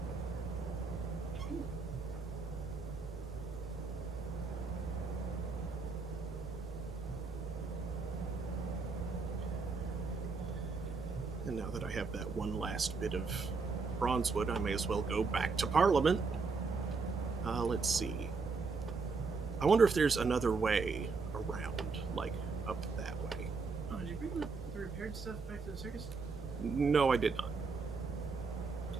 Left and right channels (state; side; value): quieter; left; 4.5 dB